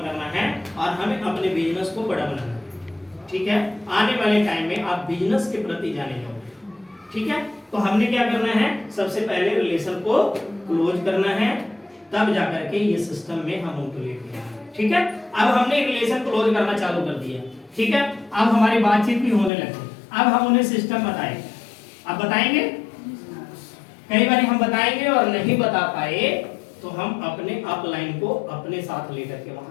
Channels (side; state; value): right; drops out; at 19.5 s